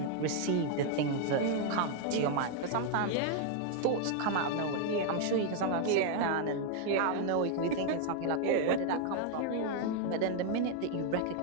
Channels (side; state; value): both; different; correlation 0.00